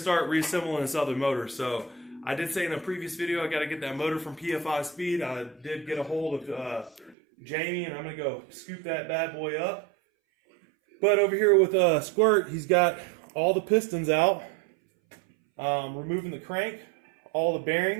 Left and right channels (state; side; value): drops out; left; at 7.2 s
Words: start reassembling this other motor. So, I did say in a previous video I got to get that motor from PFI Speed. I did get a hold of Jamie, and I'm going to go scoop that bad boy up. But over here with Squirt, he's got all the pistons out, removing the crank, all the